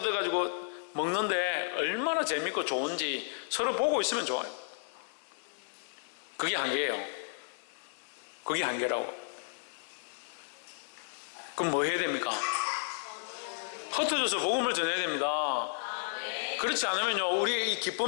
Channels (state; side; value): silent; right; 56 dB below the other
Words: 먹는데 얼마나 재밌고 좋은지 서로 보고 있으면 좋아요. 그게 한계예요. 그게 한계라고. 그럼 뭐 해야 됩니까? 흩어져서 복음을 전해야 됩니다. 그렇지 않으면요 우리의 이